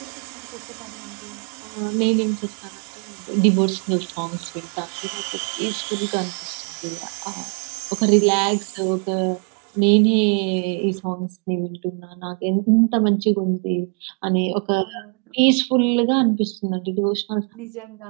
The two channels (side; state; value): left; quieter; 37.4 dB